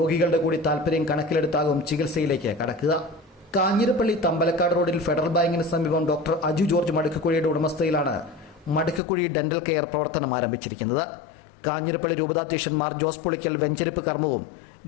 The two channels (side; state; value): right; drops out; at 9.0 s